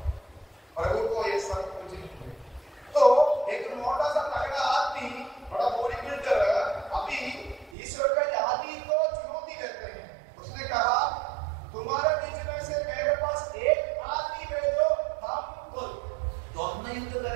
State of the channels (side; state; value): left; drops out; at 7.8 s